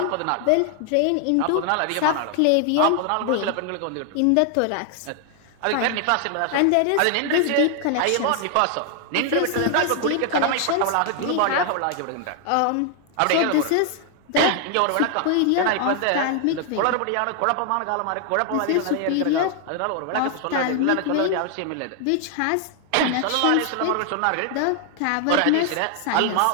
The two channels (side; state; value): both; different; correlation 0.00